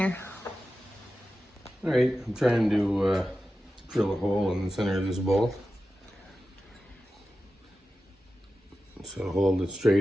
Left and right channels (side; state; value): both; normal; correlation 0.93